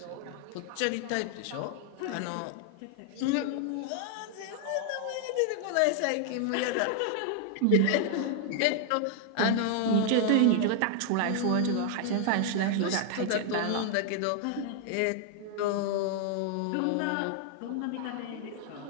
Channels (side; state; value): both; different; correlation 0.00